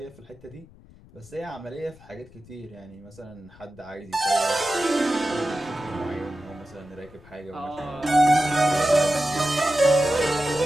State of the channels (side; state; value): left; noise; rumble, 23 dB below the sound